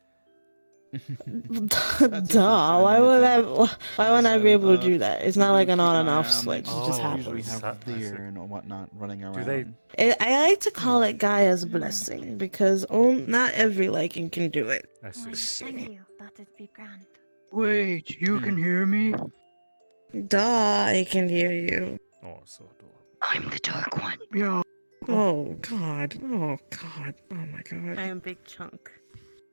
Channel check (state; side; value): inverted; both; correlation -1.00